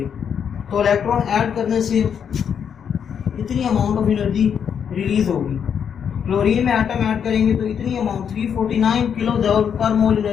तो इलेक्ट्रॉन ऐड करने से इतनी अमाउंट ऑफ एनर्जी रिलीज होगी. क्लोरीन में एटम ऐड करेंगे तो इतनी अमाउंट 349 किलो जूल पर मोल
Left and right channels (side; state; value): right; quieter; 7.7 dB